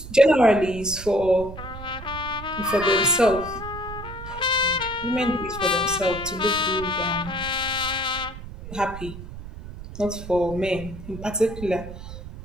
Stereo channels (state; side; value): noise; right; rumble, 12 dB below the sound